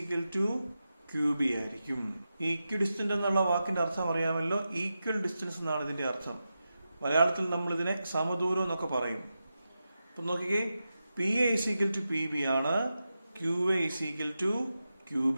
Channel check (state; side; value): inverted; both; correlation -0.90